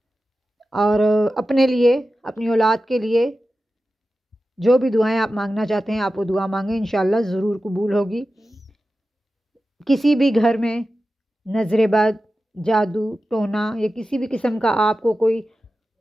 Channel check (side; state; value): both; normal; correlation 0.93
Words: اور اپنے لیے، اپنی اولاد کے لیے جو بھی دعائیں آپ مانگنا چاہتے ہیں آپ وہ دعا مانگیں، انشاءاللہ ضرور قبول ہوگی۔ کسی بھی گھر میں نظر بد، جادو ٹونا یا کسی بھی قسم کا آپ کو کوئی